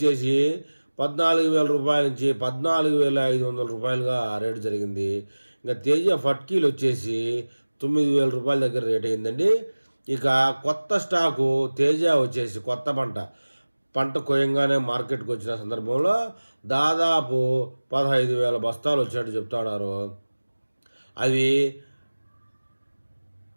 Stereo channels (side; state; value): both; inverted; correlation -1.00